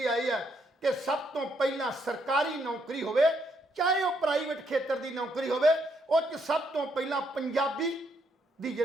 ਆਈ ਹੈ ਕਿ ਸਭ ਤੋਂ ਪਹਿਲਾਂ ਸਰਕਾਰੀ ਨੌਕਰੀ ਹੋਵੇ, ਚਾਹੇ ਉਹ ਪ੍ਰਾਈਵੇਟ ਖੇਤਰ ਦੀ ਨੌਕਰੀ ਹੋਵੇ, ਉਹ 'ਚ ਸਭ ਤੋਂ ਪਹਿਲਾਂ ਪੰਜਾਬੀ ਦੀ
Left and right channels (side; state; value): both; normal; correlation 0.74